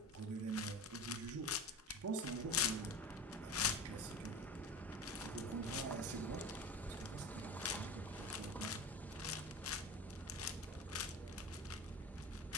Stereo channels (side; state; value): both; normal; correlation 0.31